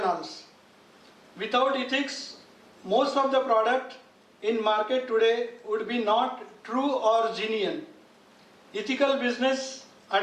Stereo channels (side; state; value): both; identical; correlation 1.00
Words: Without ethics, most of the product in market today would be not true or genuine. Ethical business